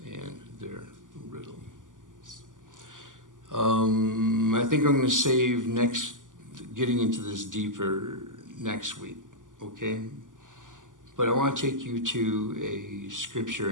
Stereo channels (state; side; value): late; left; 0.88 ms